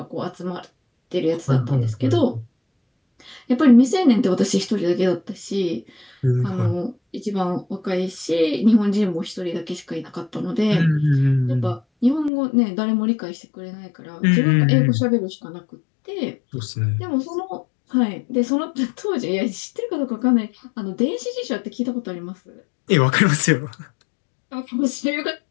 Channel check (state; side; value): drops out; right; at 12.3 s